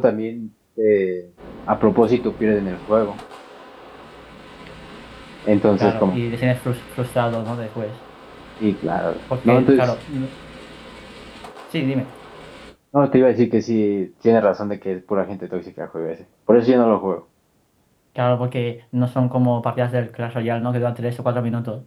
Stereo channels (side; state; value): both; identical; correlation 1.00